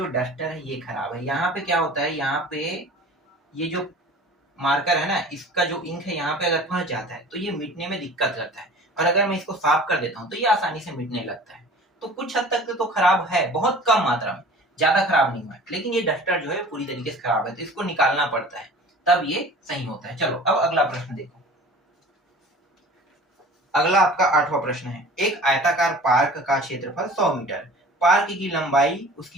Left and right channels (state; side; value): normal; both; correlation 0.43